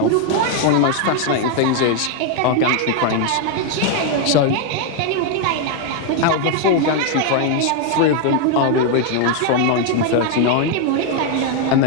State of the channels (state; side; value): different; both; correlation 0.01